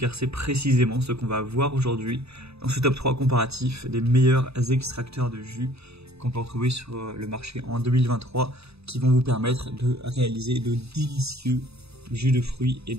c'est précisément ce qu'on va voir aujourd'hui dans ce top 3 comparatif des meilleurs extracteurs de jus qu'on peut retrouver sur le marché en 2023 qui vont vous permettre de réaliser de délicieux jus de fruits et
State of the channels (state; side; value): late; left; 0.79 ms